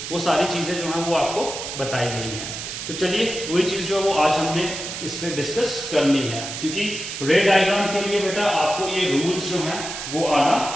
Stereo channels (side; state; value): right; noise; hiss, 7 dB below the sound